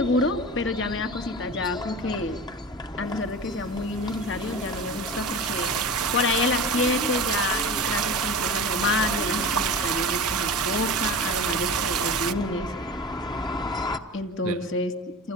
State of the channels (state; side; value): normal; both; correlation 0.31